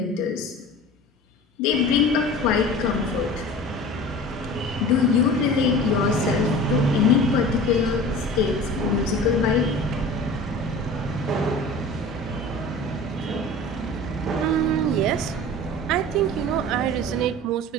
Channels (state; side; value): normal; both; correlation 0.38